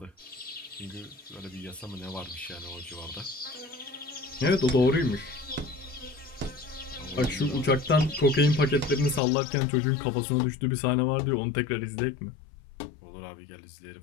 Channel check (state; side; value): drops out; right; at 9.2 s